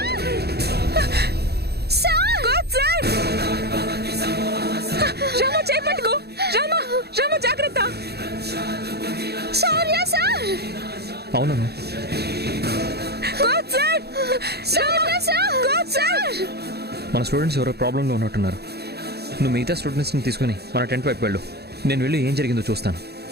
sir coach sir Rama చేపట్టుకో రామా రామా జాగ్రత్త శౌర్య సార్ అవునను coach sir Shaurya sir coach sir మన స్టూడెంట్స్ ఎవరో ప్రాబ్లంలో ఉన్నట్టున్నారు. నువ్వు మిగతా స్టూడెంట్స్ని తీసుకుని మన టెంట్ వైపు వెళ్ళు. నేను వెళ్ళి ఏం జరిగిందో చూస్తాను.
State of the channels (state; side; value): late; left; 0.47 ms